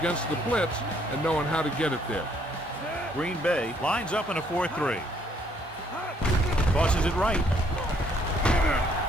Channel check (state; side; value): normal; both; correlation 0.67